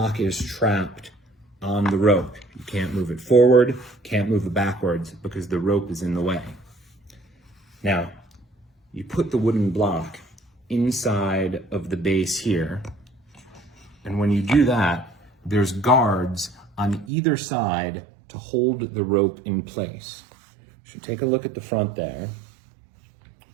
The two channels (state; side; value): drops out; left; at 17.1 s